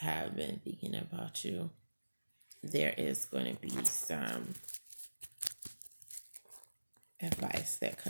been thinking about you, there is going to be some advice that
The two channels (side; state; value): both; inverted; correlation -1.00